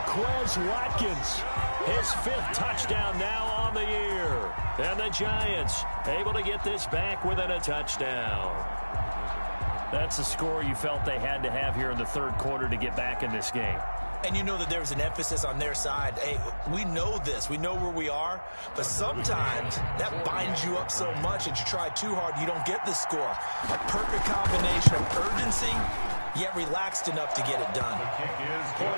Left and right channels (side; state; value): both; inverted; correlation -1.00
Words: Quez Watkins, his 5th touchdown now on the year. And the Giants able to get this back within a touchdown. That's a score you felt they had to have here in the 3rd quarter to get back in this game. And you know that there's an emphasis on their side. Hey, we know this. We know where we are. But sometimes that binds you up so much that you try too hard, you don't get the score. A perfect combination of urgency, yet relaxed enough to get it done.